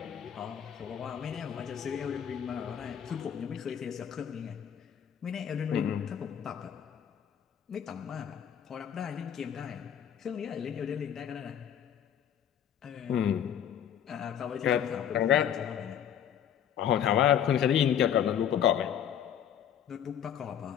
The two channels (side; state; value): right; quieter; 9.3 dB